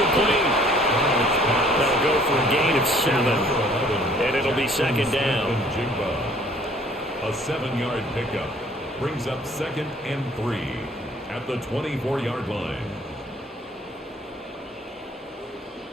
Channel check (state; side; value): normal; both; correlation 0.57